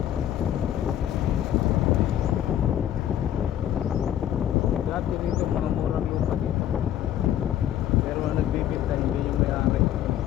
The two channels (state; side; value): quieter; right; 11.3 dB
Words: Dati dito mga murang lupa dito. Pero ang nagbibigay hindi yung may-ari.